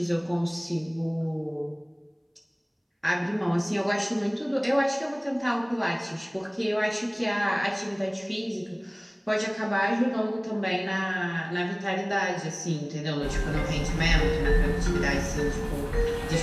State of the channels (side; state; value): both; identical; correlation 1.00